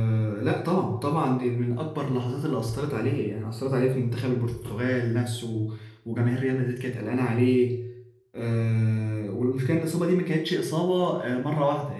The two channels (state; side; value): identical; both; correlation 1.00